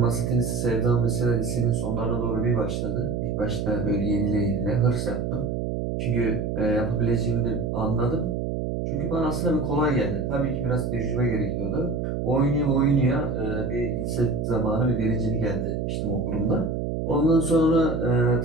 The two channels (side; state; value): right; noise; hum, 2 dB below the sound